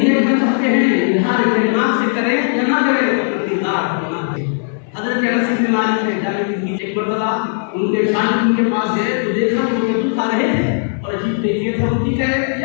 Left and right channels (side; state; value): right; silent; 61 dB below the other